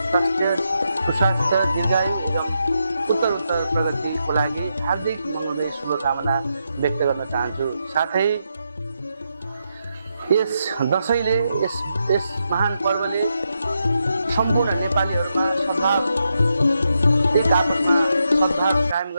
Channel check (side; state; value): both; inverted; correlation -0.83